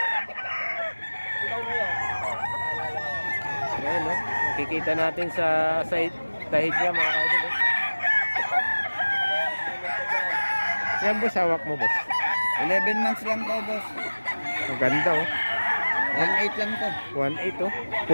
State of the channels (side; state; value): both; inverted; correlation -1.00